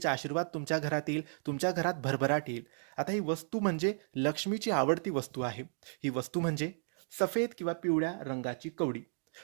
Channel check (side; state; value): left; silent; digital silence